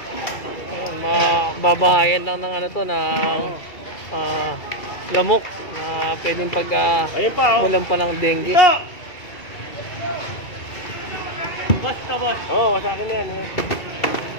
Ayan, mababahayan lang ng ano to, ng lamok na pwedeng pag mulan pa ng dengue. Basta, boss. Oo, sa akin na yan.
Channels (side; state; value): right; late; 2.3 ms